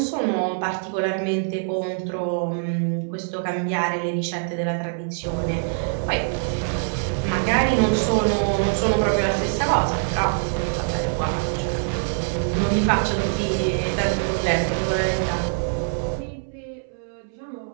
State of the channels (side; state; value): left; silent; 62 dB below the other